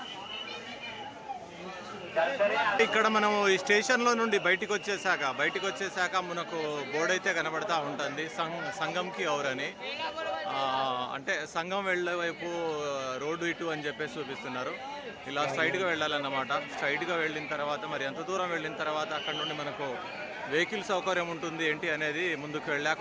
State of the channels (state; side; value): identical; both; correlation 1.00